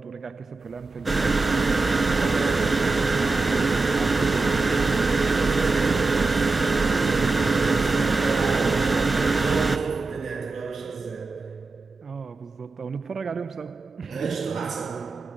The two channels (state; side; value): quieter; left; 3.7 dB